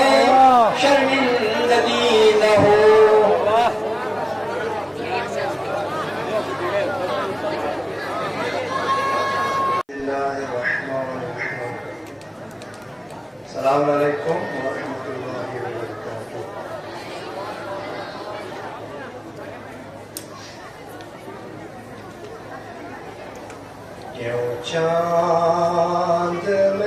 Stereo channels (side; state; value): both; identical; correlation 1.00